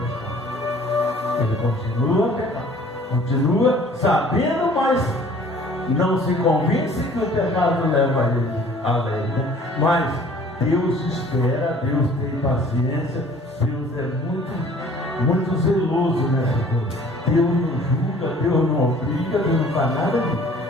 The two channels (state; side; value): normal; both; correlation 0.52